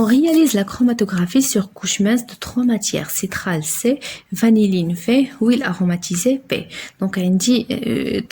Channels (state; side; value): identical; both; correlation 1.00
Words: réalise la chromatographie sur couche mince de 3 matières. Citral C, vanilline V, huile aromatisée P. Donc on dit